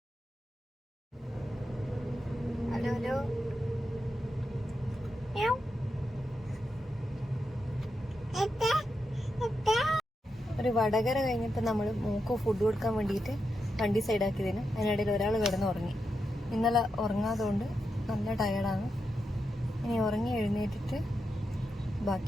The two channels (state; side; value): normal; both; correlation 0.86